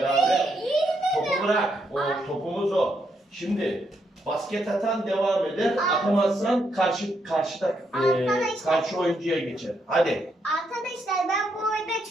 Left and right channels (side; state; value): both; normal; correlation 0.78